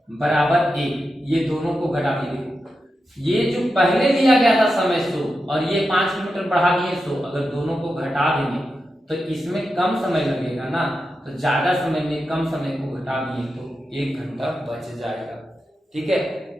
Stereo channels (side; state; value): both; normal; correlation 0.89